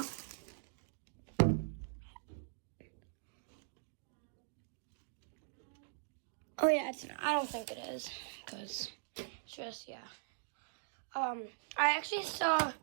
Oh yeah, it's not. I don't think it is, because it's just, yeah. I actually saw,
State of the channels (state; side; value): silent; left; digital silence